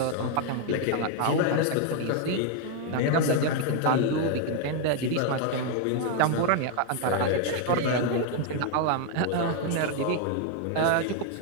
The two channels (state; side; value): different; both; correlation 0.00